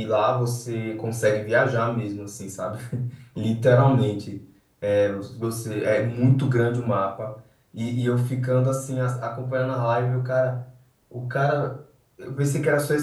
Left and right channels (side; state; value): both; identical; correlation 1.00